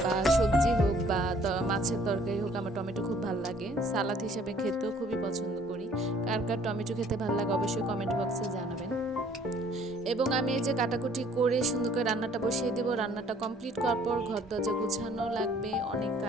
বা সবজি হোক বা মাছের তরকারি হোক, আমার টমেটো খুব ভালো লাগে। সালাদ হিসাবে খেতেও খুবই পছন্দ করি। কার কার টমেটো খেতে ভালো লাগে অবশ্যই কমেন্ট বক্সে জানাবেন। এবং আমি এই যে কাটাকুটি করে সুন্দর করে রান্নাটা বসিয়ে দেবো। রান্নাটা কমপ্লিট করার পর ঘর দরজা গুছানো লাগবে, অনেক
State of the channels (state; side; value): normal; both; correlation 0.58